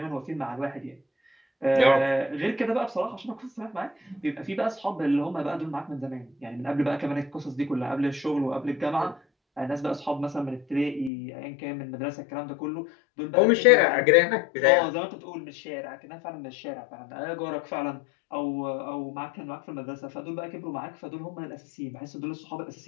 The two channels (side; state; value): right; drops out; at 11.1 s